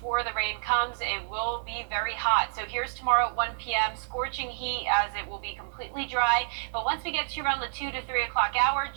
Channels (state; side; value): silent; left; 56 dB below the other